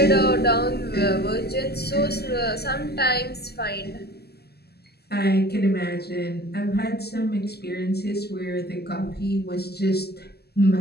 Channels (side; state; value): right; late; 0.46 ms